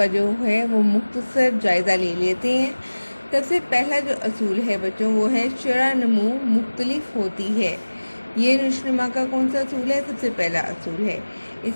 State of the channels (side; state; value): both; inverted; correlation -1.00